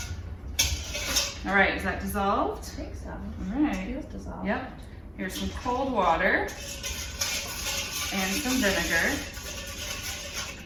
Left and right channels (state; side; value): identical; both; correlation 1.00